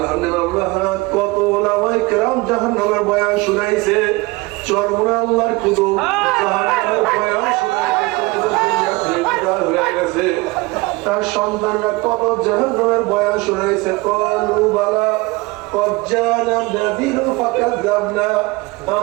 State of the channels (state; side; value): quieter; left; 23.5 dB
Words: কত ওলামায়ে কেরাম জাহান্নামের বয়ান শুনাইছে চরমুনা আল্লাহর কুতুব জাহান্নামের বয়ান শুনাইছে তার সন্তানরা কত জাহান্নামের বয়ান শুনাইছে ক্বালু বালা قد جاءنا نذير فكذبنا